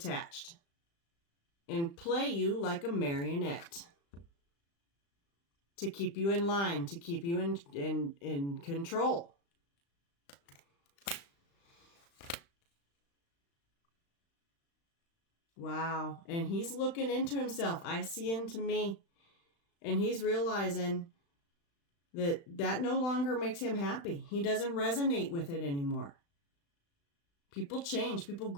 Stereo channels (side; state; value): right; late; 35 ms